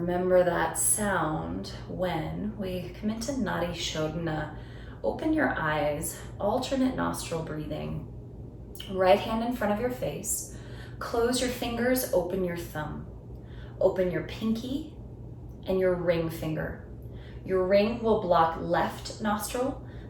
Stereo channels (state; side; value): identical; both; correlation 1.00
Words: that sound when we come into Nadi Shodhana. Open your eyes, alternate nostril breathing. Right hand in front of your face. Close your fingers, open your thumb. Open your pinky and your ring finger. Your ring will block left nostril,